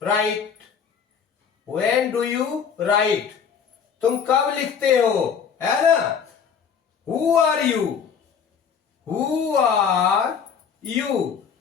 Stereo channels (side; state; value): right; quieter; 6.9 dB